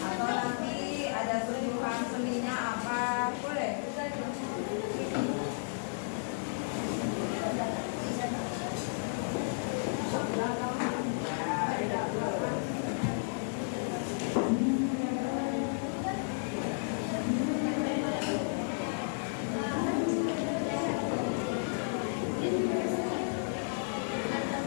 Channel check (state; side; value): silent; right; digital silence